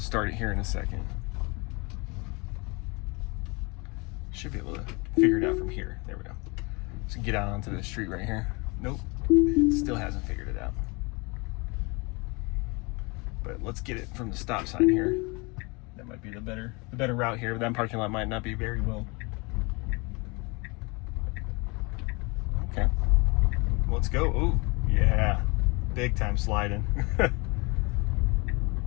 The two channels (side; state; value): right; quieter; 28.2 dB